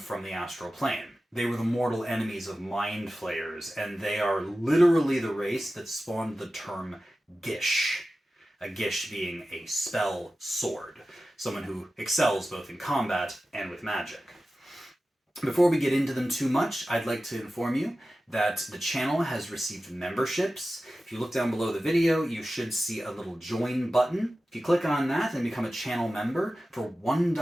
the astral plane. They were the mortal enemies of mind flayers, and they are literally the race that spawned the term Gish. A Gish being a spell sword, someone who excels both in combat and with magic. Before we get into them too much, I'd like to inform you that the channel has received memberships. If you look down below the video, you should see a little join button. If you click on that and become a channel member, for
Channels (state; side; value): normal; both; correlation 0.95